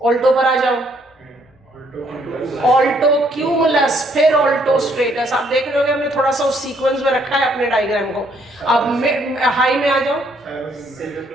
Alto पर आ जाओ, ऑल्टो क्यूमुलस, फिर ऑल्टो स्ट्रेटस। आप देख रहे हो हमने थोड़ा सा उस सीक्वेंस में रखा है अपने डायग्राम को। अब हाई में आ जाओ,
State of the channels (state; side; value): normal; both; correlation 0.68